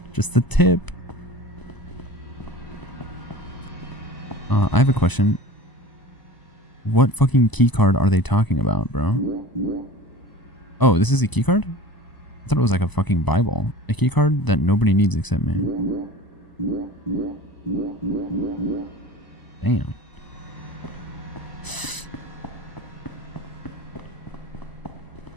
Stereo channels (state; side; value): late; right; 1.0 ms